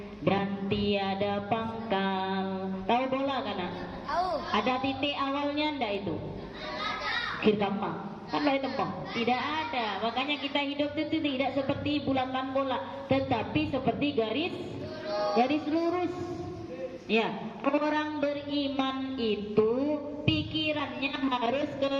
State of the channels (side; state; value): both; identical; correlation 1.00